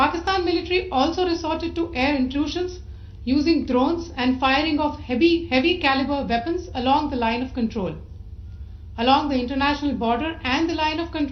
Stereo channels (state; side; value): identical; both; correlation 1.00